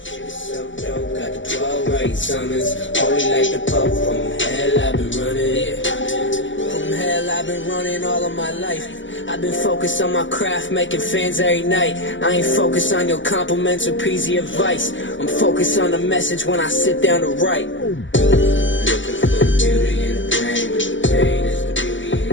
I've been running all of my life. I've been focused on my craft, making fans every night. I ain't focused on your compliments or peasy advice. I'm focused on the message when I sit down to write. Looking for the beauty in the pain, but the pain is the beauty and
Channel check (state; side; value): late; right; 0.55 ms